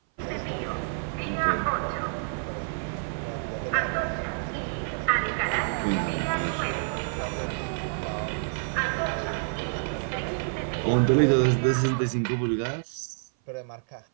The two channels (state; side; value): silent; left; 57 dB below the other